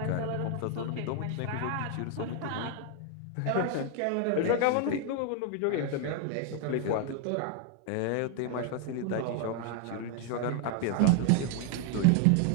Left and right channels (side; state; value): both; different; correlation 0.01